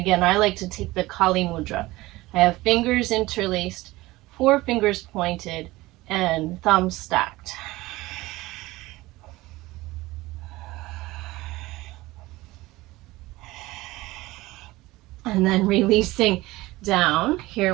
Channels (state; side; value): quieter; left; 19.3 dB